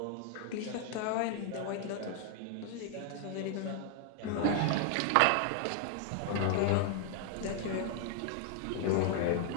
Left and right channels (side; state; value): both; different; correlation 0.00